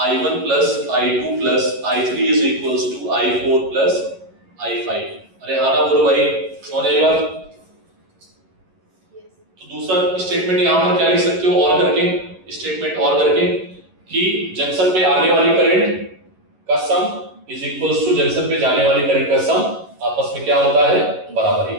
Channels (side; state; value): left; late; 11 ms